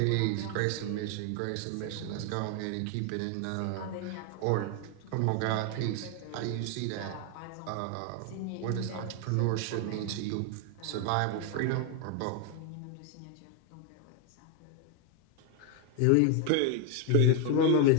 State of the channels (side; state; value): both; different; correlation 0.01